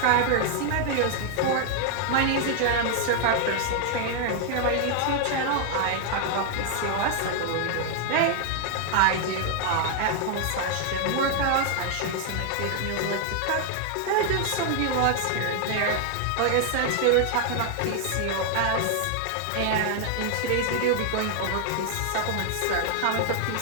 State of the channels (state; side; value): different; both; correlation 0.00